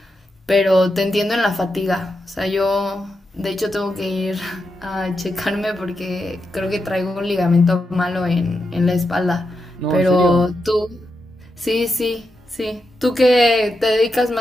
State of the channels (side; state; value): both; normal; correlation 0.86